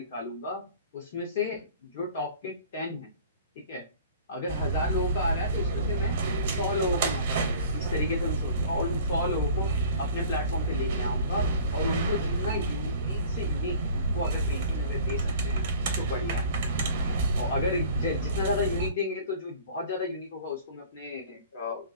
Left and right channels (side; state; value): both; inverted; correlation -0.47